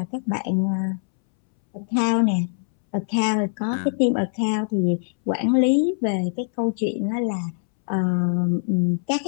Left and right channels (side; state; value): right; silent; 63 dB below the other